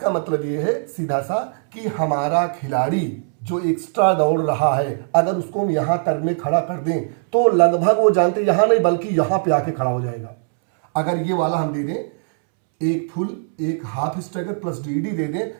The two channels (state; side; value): silent; left; 65 dB below the other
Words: मतलब ये है सीधा सा कि हमारा खिलाड़ी जो एक्स्ट्रा दौड़ रहा है, अगर उसको हम यहां कर्व में खड़ा कर दें तो लगभग वो जानते यहां नहीं बल्कि यहां पे आके खड़ा हो जाएगा। अगर ये वाला हम दे दें, एक फुल एक हाफ स्ट्राइकर प्लस डीडी दे